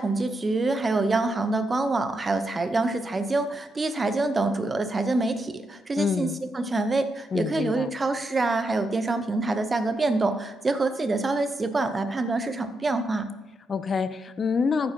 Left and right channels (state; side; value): normal; both; correlation 0.83